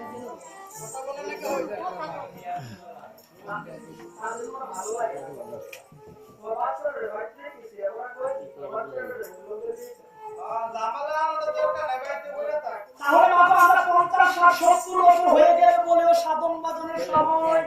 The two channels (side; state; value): both; identical; correlation 1.00